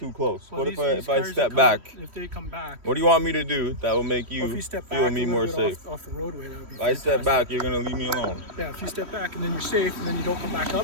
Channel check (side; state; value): left; late; 3.1 ms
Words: close. Well, What these if I cars step that back? if they come back. What do you want me to do that will make Well, if you you step feel back me a more little bit safe? off the roadway, that would be If I step fantastic. back, you're gonna leave me alone. Yeah, if you step back and then you're safe, and then you don't come back